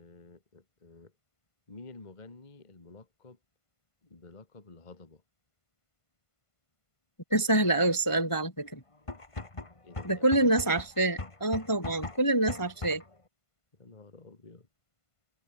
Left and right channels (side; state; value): right; late; 1.5 ms